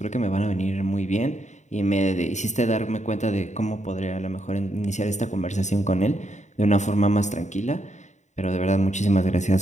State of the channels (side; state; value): right; late; 0.34 ms